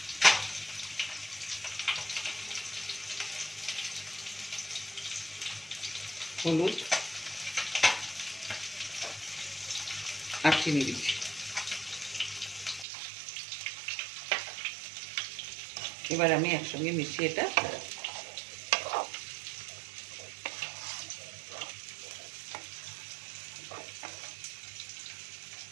হলুদ আর চিনি দিচ্ছি। এবার আমি একসঙ্গে মিশিয়ে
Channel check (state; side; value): drops out; left; at 12.9 s